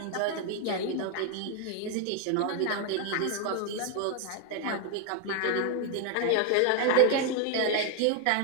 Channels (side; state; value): both; different; correlation 0.01